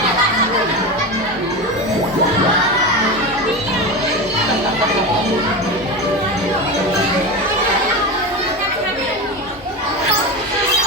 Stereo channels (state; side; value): normal; both; correlation 0.22